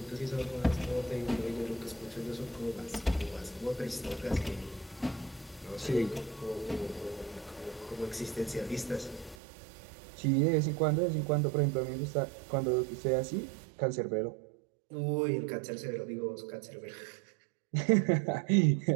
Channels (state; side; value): drops out; left; at 9.3 s